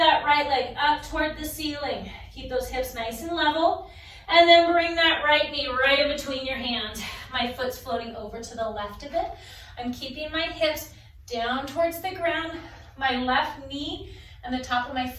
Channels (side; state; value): both; identical; correlation 1.00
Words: right leg up toward the ceiling. Keep those hips nice and level. And then bring that right knee right in between your hands. My foot's floating over to the left of it. I'm keeping my hips down towards the ground. My left knee and the top of my